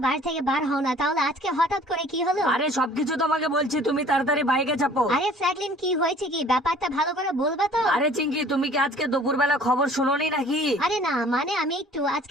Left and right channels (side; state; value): both; normal; correlation 0.52